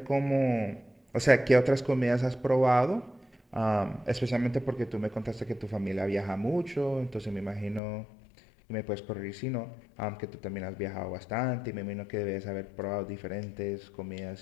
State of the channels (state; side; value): drops out; right; at 7.8 s